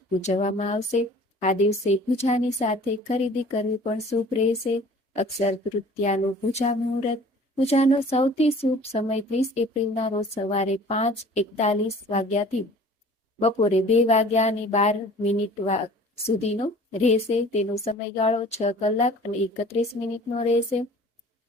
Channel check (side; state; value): both; normal; correlation 0.48